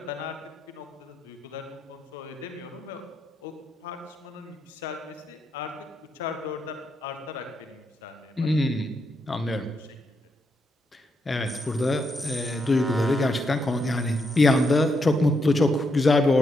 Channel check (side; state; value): both; normal; correlation 0.81